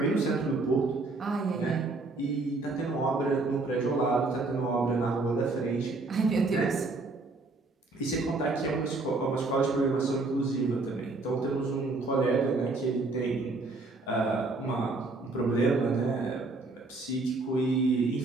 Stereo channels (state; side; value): quieter; left; 3.4 dB